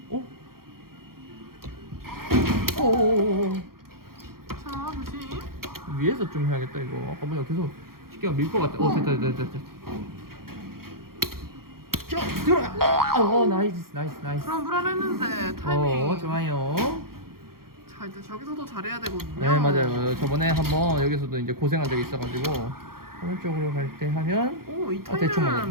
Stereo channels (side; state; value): left; late; 0.93 ms